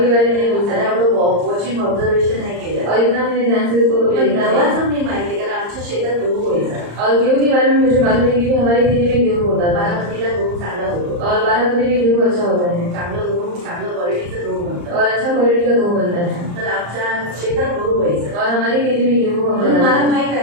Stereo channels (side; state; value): left; late; 34 ms